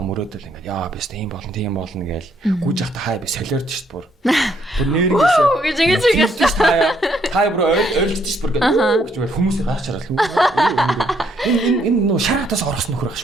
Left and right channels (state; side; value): normal; both; correlation 0.70